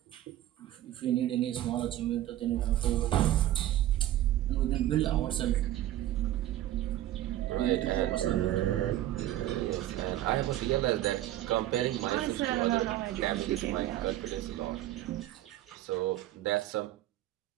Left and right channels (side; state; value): left; quieter; 13.7 dB